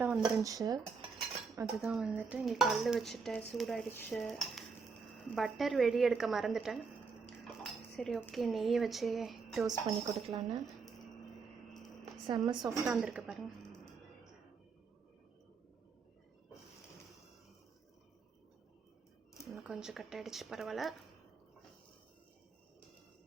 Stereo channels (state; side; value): quieter; left; 5.1 dB